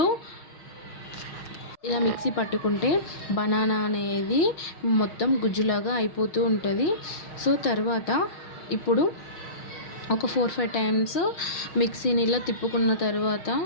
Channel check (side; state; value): right; late; 6.4 ms